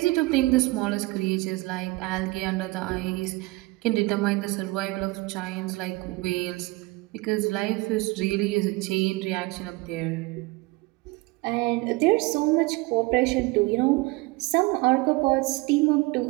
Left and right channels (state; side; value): quieter; left; 22.6 dB